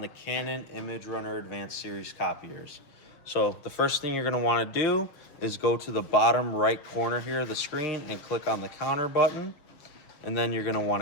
the Canon imageRUNNER Advanced Series copiers. So the first thing you're going to want to do is go to the bottom right corner here of the screen and click on the counter button. And then you're going to want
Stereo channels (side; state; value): right; late; 6.7 ms